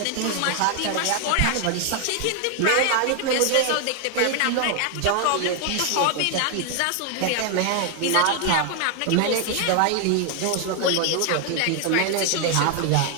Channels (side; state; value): both; different; correlation 0.00